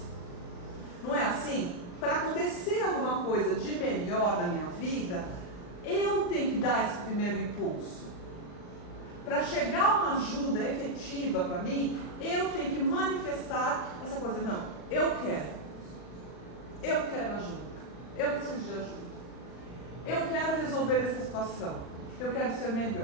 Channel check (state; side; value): late; right; 39 ms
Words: Não é assim? Para acontecer alguma coisa de melhor na minha vida, eu tenho que dar esse primeiro impulso. Para chegar uma ajuda efetiva para mim, eu tenho que manifestar essa coisa. Não, eu quero ajuda, eu preciso de ajuda, eu quero resolver essa situação, eu quero ser